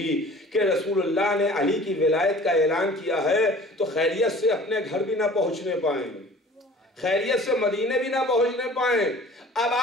کہ رسول اللہ نے علی کی ولایت کا اعلان کیا ہے تو خیریت سے اپنے گھر بھی نہ پہنچنے پائیں، خیریت سے مدینے بھی نہ پہنچنے پائیں۔ اب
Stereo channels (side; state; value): both; normal; correlation 0.46